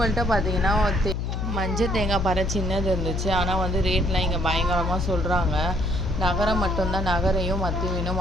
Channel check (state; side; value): noise; left; hum, 2 dB below the sound